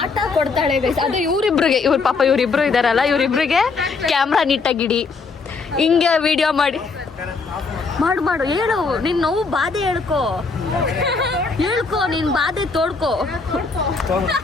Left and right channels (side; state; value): right; quieter; 4.4 dB